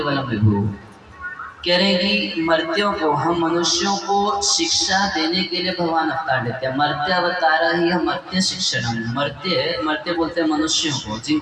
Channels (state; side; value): identical; both; correlation 1.00